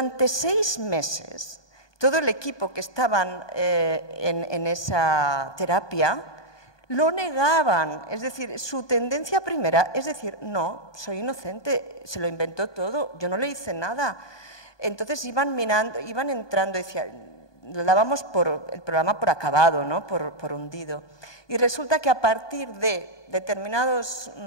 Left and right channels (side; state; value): right; late; 1.2 ms